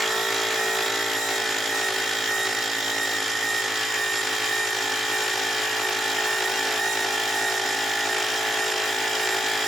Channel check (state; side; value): normal; both; correlation 0.82